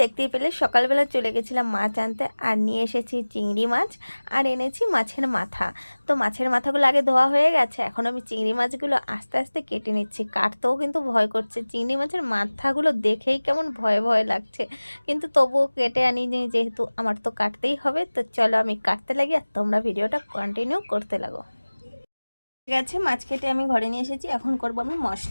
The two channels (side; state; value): both; inverted; correlation -1.00